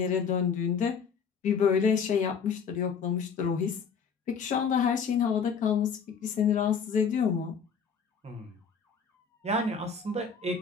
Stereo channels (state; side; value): quieter; right; 6.2 dB